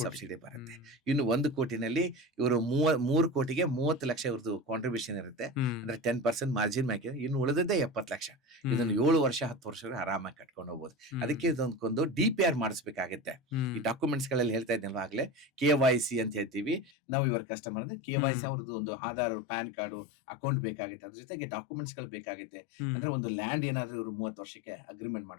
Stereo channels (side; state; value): right; drops out; at 16.9 s